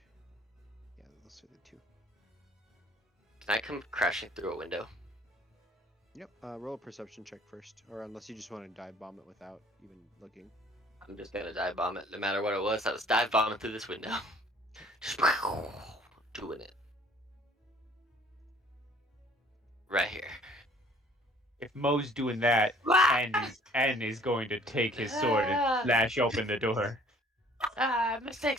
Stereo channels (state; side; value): normal; both; correlation 0.56